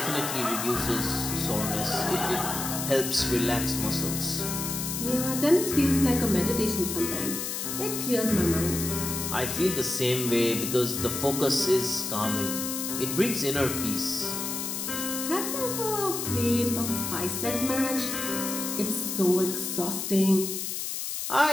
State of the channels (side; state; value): left; noise; hiss, 4 dB below the sound